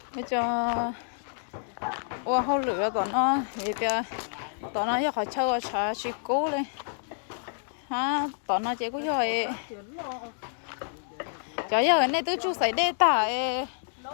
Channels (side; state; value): right; silent; digital silence